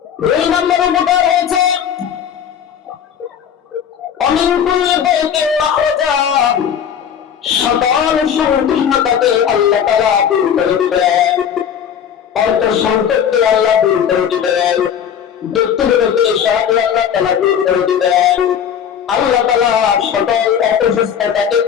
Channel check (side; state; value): right; quieter; 8.5 dB